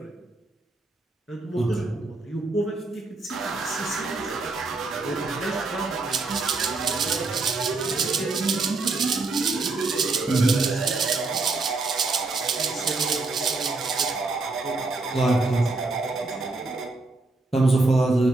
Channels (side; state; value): left; quieter; 3.4 dB